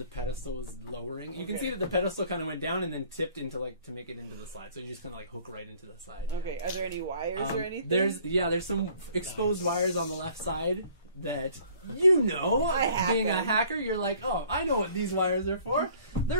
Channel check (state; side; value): inverted; both; correlation -0.56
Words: pedestal was lowering. You can Okay. see that the pedestal kind of went down and then tipped into like to make it into the slide. So you just kind of like hook right into the side. Okay, are there any wires or anything? There's some exposed wires on the left side that you know. I hack being a them. hacker, you're like, oh, I know what these wires are for.